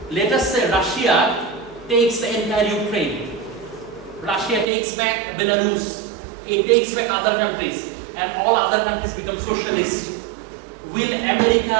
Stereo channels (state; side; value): drops out; left; at 4.7 s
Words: Let us say Russia takes the entire Ukraine. Russia takes back Belarus. It takes back other countries. And all other countries become socialist. Will